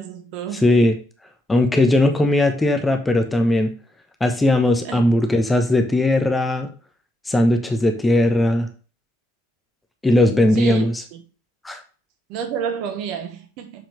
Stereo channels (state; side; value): normal; both; correlation 0.82